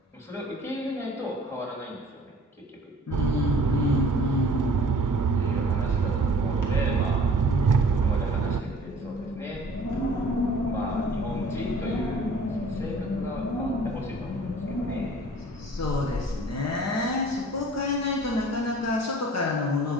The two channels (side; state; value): both; normal; correlation 0.50